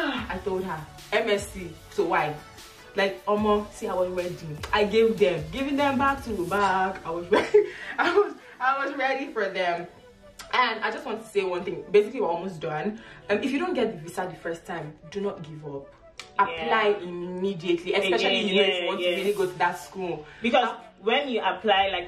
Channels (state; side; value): identical; both; correlation 1.00